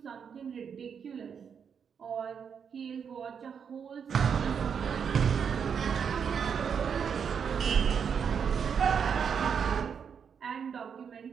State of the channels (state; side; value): quieter; left; 7.0 dB